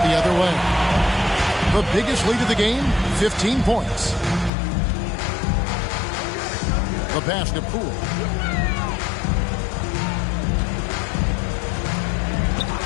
the other way. The biggest lead of the game, 15 points. The pass to Poole.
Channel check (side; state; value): right; drops out; at 4.5 s